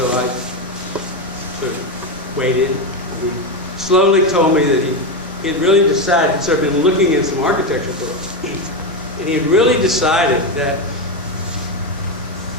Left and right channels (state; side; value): normal; both; correlation 0.11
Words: I sort of waited. He slowly told me that he had really decided, he'd sort of been looking at some architecture books, and he had really decided that